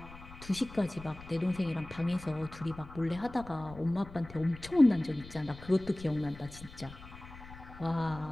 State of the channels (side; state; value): left; noise; rumble, 16 dB below the sound